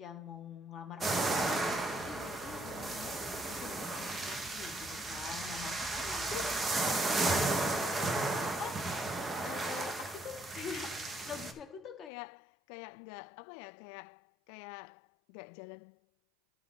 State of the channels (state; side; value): drops out; right; at 12.1 s